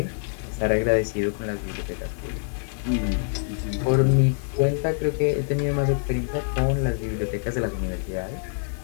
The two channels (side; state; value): right; silent; 62 dB below the other